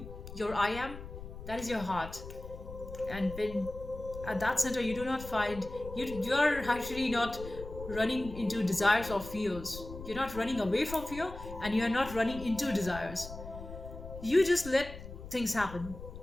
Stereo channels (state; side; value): noise; left; rumble, 12 dB below the sound